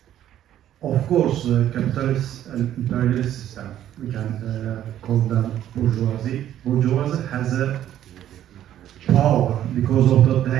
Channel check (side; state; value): left; quieter; 11.6 dB